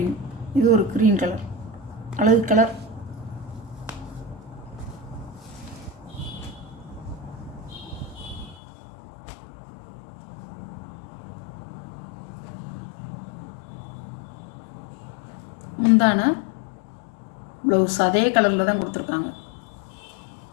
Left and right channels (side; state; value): right; drops out; at 8.6 s